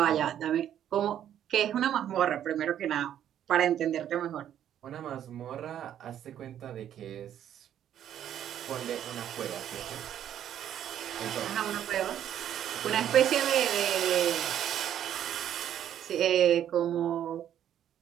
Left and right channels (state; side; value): quieter; left; 10.4 dB